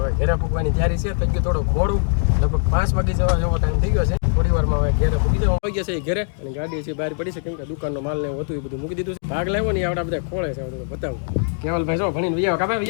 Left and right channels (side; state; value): right; silent; digital silence